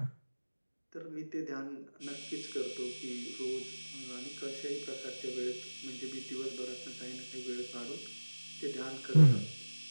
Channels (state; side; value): inverted; both; correlation -1.00